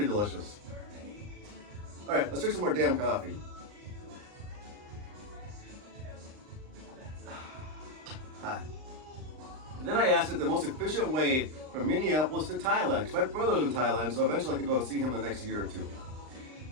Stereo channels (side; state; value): left; late; 39 ms